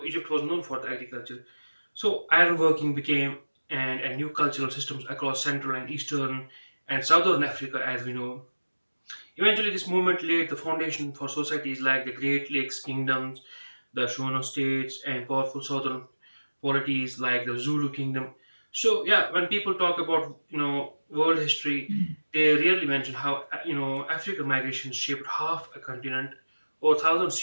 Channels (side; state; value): both; inverted; correlation -1.00